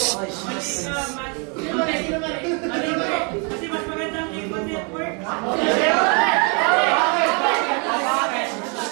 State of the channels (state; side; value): quieter; left; 35.1 dB